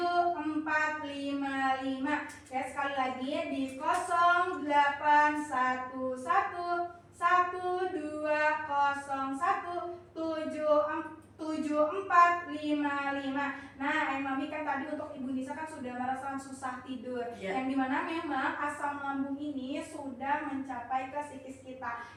ya, sekali lagi di 0811 1201 7455. Nah, Mami kan tadi untuk Ibu Nisa kan sudah merasakan susah tidur, yang dimana memang asam lambung ini sudah mencapai ke psikis kita,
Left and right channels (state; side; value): identical; both; correlation 1.00